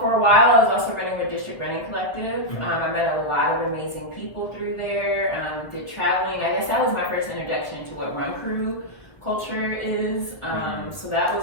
for a while I was also running with District Running Collective. I met a lot of amazing people through there, did traveling. I guess that was my first introduction to what run crew culture is. So that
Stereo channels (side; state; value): right; late; 1.2 ms